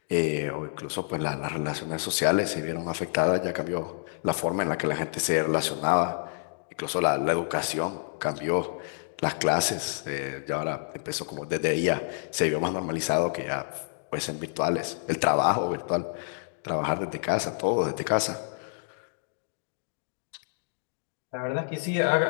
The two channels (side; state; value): right; silent; digital silence